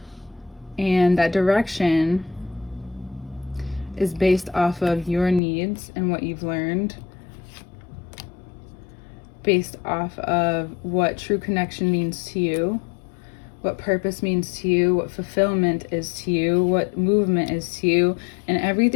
And that direction is based off of your needs and what you've learned, based off of what true connection means to you, what purpose means to you, what fulfillment is to you, what movement is to you, and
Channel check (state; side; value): drops out; right; at 5.4 s